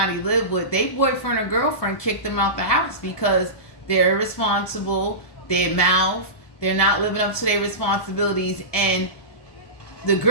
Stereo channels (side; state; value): right; late; 1.2 ms